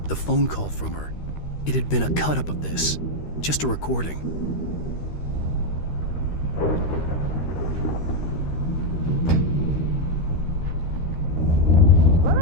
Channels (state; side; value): late; right; 13 ms